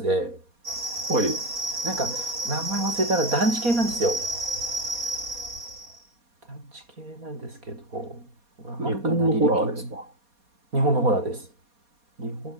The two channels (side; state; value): left; late; 4.2 ms